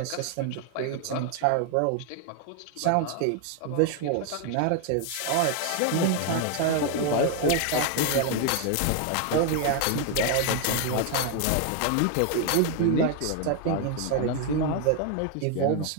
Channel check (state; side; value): different; both; correlation 0.01